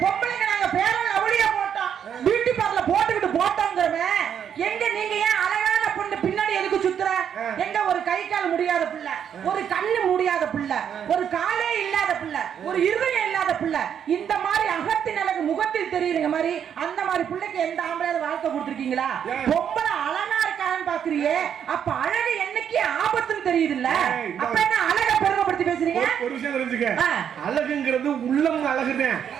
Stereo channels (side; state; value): left; quieter; 8.5 dB